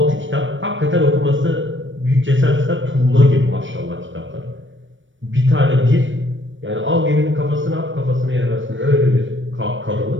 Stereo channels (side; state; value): left; late; 0.56 ms